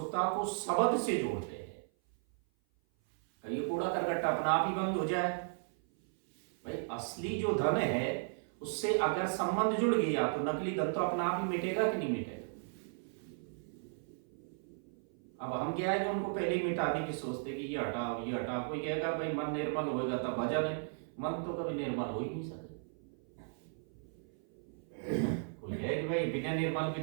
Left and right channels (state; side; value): silent; left; 54 dB below the other